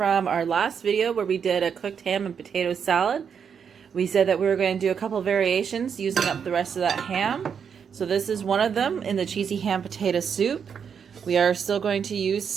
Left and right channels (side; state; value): left; quieter; 7.1 dB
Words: our last video where we did a cooked ham and potato salad, we said that we were going to do a couple variations using up the rest of that ham. So this is one of them in the cheesy ham potato soup. We are still going to use